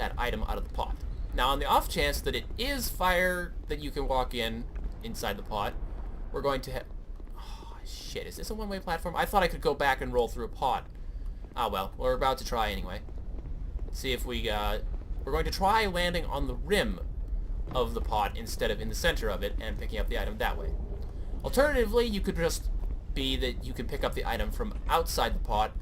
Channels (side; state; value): both; identical; correlation 1.00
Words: item out of the pot. Now, on the off chance that it is fire that you can walk inside the pot, we're going to have... Oh, shit, is this a one-way platform? I thought I could go back and roll through a pot. Ah, well, we're about to try anyway. See if we're going to try landing on the rim of the pot instead of in the center of it and picking up the item that way. Alternatively, you could just be that you can pick up the item from outside the pot